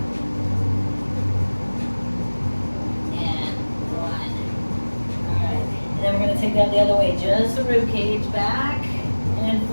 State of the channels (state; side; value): inverted; both; correlation -1.00